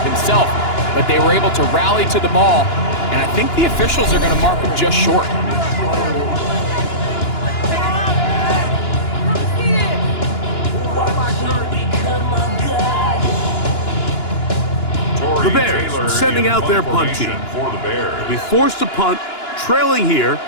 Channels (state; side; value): late; right; 2.9 ms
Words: himself, but they were able to rally to the ball, and I think the officials are going to mark him just short. The Bears sending out their punt team. They'll be forced to punt, trailing here